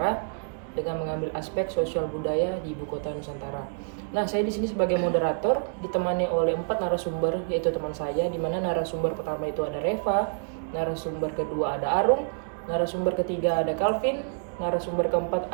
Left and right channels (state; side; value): silent; left; digital silence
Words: dengan mengambil aspek sosial budaya di Ibu Kota Nusantara. Nah, saya di sini sebagai moderator ditemani oleh 4 narasumber, yaitu teman saya, di mana narasumber pertama itu ada Reva, narasumber kedua ada Arung, narasumber ketiga ada Calvin, narasumber keempat